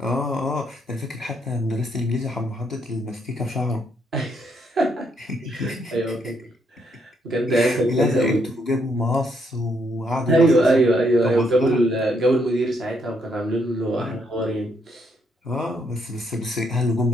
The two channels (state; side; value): normal; both; correlation 0.74